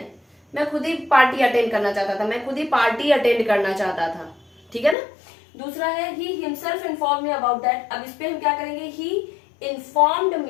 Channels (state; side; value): drops out; right; at 5.0 s